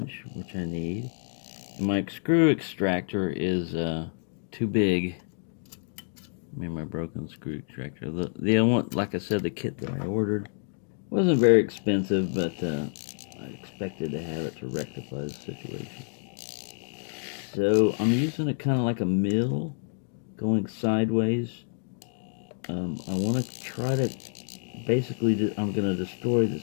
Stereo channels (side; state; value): right; silent; digital silence